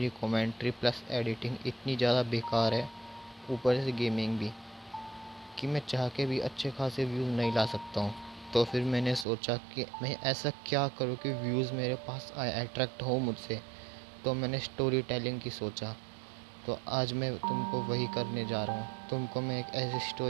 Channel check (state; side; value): drops out; left; at 9.2 s